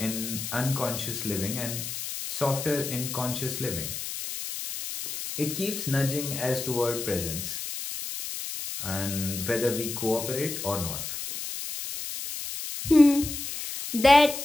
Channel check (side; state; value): left; noise; hiss, 6 dB below the sound